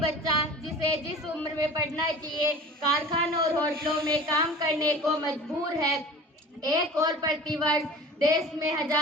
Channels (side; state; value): both; normal; correlation 0.40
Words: जिसे जिस उम्र में पढ़ना चाहिए कारखानों और होटलों में काम करने को मजबूर है। एक और प्रतिवर्ष देश में